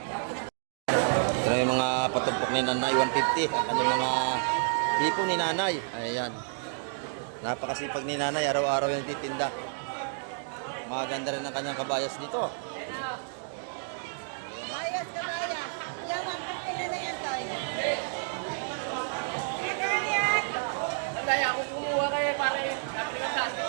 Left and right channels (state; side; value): silent; left; digital silence